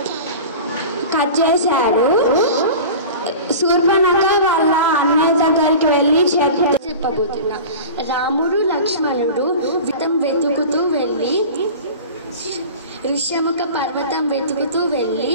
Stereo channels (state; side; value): inverted; both; correlation -0.35